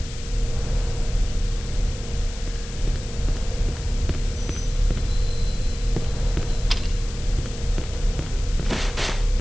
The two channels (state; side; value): noise; left; hiss, 14 dB below the sound